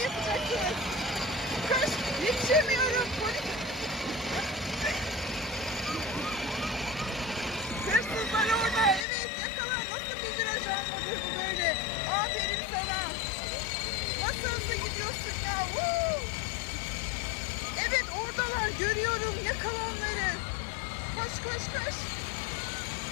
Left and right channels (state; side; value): drops out; right; at 9.1 s